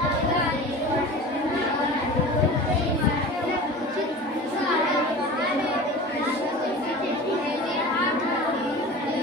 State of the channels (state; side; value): normal; both; correlation 0.36